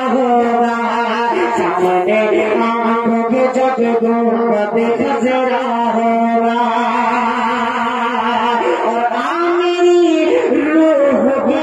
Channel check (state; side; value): identical; both; correlation 1.00